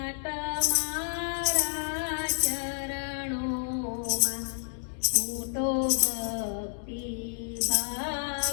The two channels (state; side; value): silent; right; digital silence